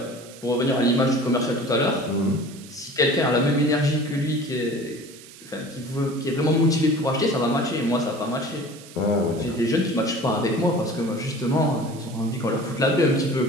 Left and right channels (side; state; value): right; noise; hiss, 19 dB below the sound